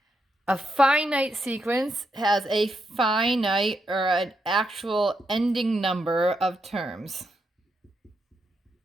A finite sequence has a finite or an actual ending number of terms.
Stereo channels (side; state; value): both; normal; correlation 0.81